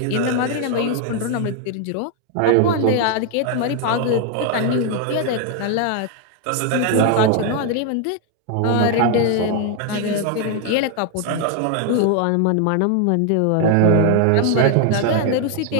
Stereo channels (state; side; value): different; both; correlation 0.00